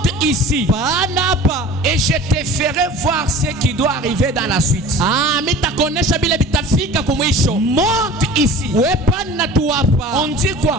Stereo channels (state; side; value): normal; both; correlation 0.40